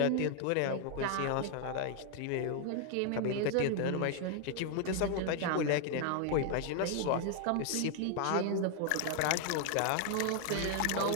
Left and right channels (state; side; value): different; both; correlation 0.00